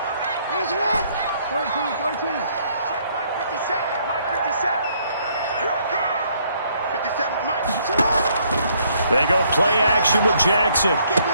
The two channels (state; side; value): inverted; both; correlation -0.67